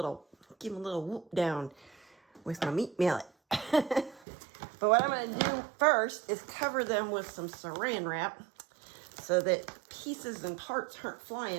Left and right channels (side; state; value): left; drops out; at 4.2 s